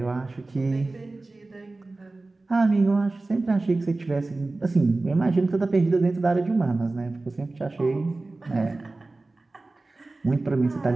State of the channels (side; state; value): left; quieter; 3.2 dB